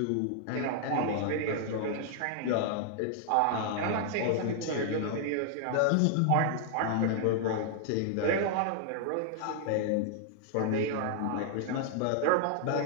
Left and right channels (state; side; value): different; both; correlation 0.00